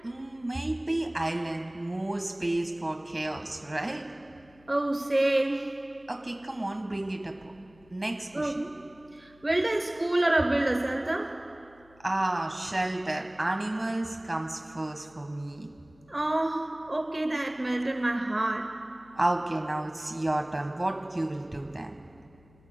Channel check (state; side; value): noise; left; hum, 28 dB below the sound